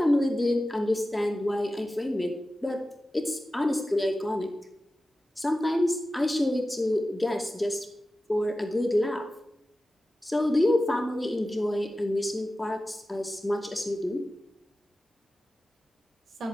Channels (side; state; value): both; normal; correlation 0.94